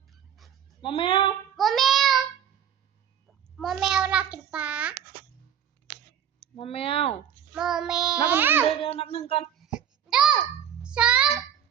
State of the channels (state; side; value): quieter; left; 9.1 dB